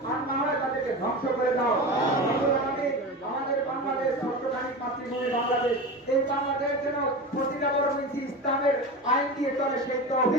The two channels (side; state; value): both; normal; correlation 0.26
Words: আর না হয় তাদেরকে ধ্বংস করে দাও। আমাদের বাংলাদেশ সত্যকামী মাতৃভূমি বাংলাদেশ, এই বাংলাদেশ যেন প্রতিটা বড় মিছি ইসলামের আইন দিয়ে চলে সেই